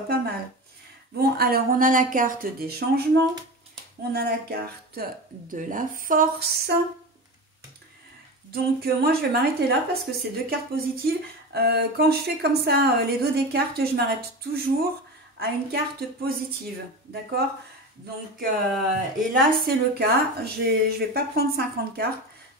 pas mal. Bon, alors, on a la carte des changements. On a la carte de la force. Donc, moi, je vais m'arrêter là parce que c'est deux cartes positives. Quand je fais comme ça les dos des cartes, je m'arrête toujours à une carte positive. D'accord? Donc, et là, c'est le cas. Je ne vais pas prendre 50 cartes.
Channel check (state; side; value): normal; both; correlation 0.26